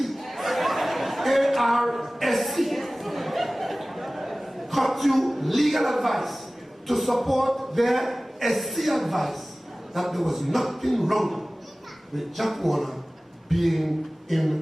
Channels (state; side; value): normal; both; correlation 0.98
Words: ARSC, got you legal advice to support their SC advice that there was nothing wrong with Jack Warner being